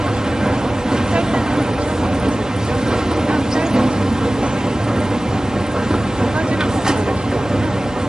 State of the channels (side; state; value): both; normal; correlation 0.97